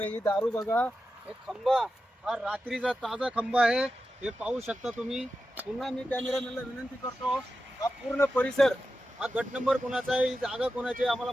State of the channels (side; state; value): both; normal; correlation 0.91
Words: ही दारू बघा. एक खंबा, हा रात्रीचा ताजा खंबा आहे. हे पाहू शकता तुम्ही. पुन्हा मी कॅमेरामॅनला विनंती करतो, हा पूर्ण परिसर, हा गट नंबर कोणाचा आहे, ही जागा कोणाची आहे आम्हाला